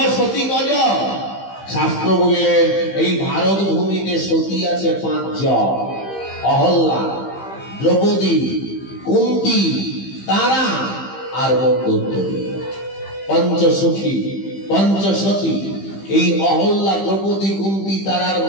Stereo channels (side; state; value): right; late; 15 ms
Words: সতী কজন? শাস্ত্র বললেন, এই ভারত ভূমিতে সতী আছে 5 জন। অহল্যা, দ্রৌপদী, কুন্তী, তারা আর মন্দোদরী। পঞ্চসখী, পঞ্চসতী। এই অহল্যা, দ্রৌপদী, কুন্তী, তারার,